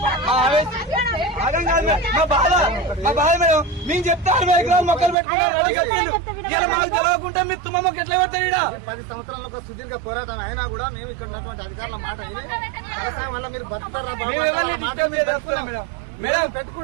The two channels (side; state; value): left; drops out; at 5.2 s